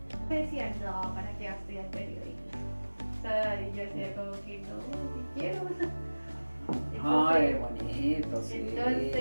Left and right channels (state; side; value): inverted; both; correlation -1.00